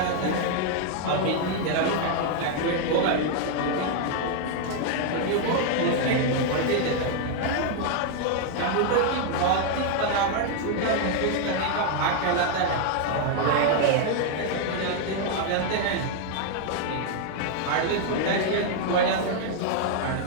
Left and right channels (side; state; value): both; different; correlation 0.00